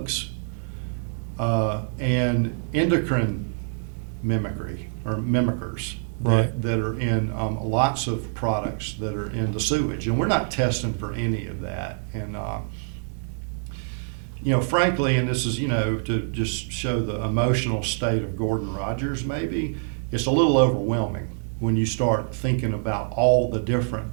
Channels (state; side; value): silent; left; digital silence